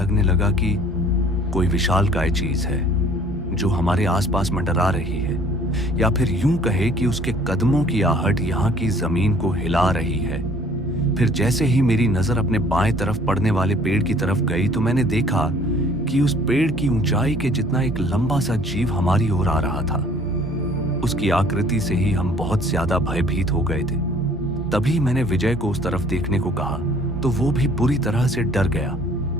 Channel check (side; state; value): both; normal; correlation 0.55